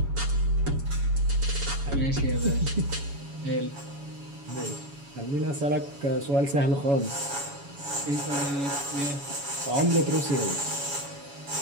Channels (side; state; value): left; late; 7.1 ms